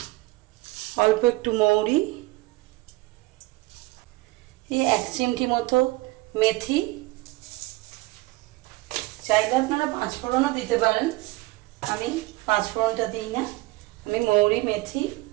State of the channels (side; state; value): left; quieter; 20.8 dB